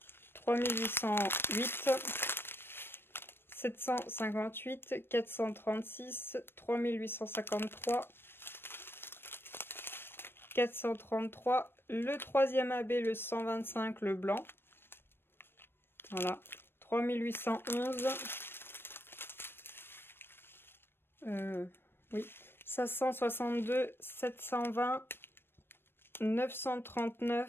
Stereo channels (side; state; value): right; late; 0.10 ms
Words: 3808, 758, 436, 3853, 433. Le troisième AB, le 125, le blanc. Voilà. 3811. Oui. 562, 720,